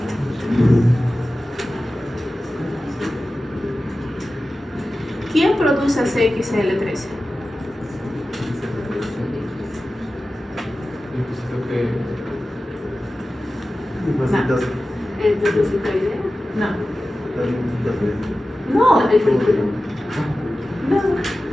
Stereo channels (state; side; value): normal; both; correlation 0.95